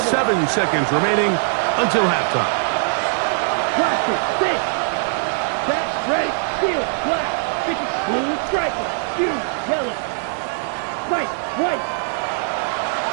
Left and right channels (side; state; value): left; silent; digital silence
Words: seconds remaining until halftime. Cluster, 6. Set, ready, field, black. 50, blue, striker, blue, yellow. White, white.